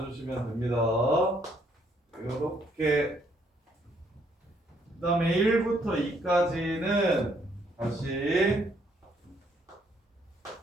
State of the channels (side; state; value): both; normal; correlation 0.69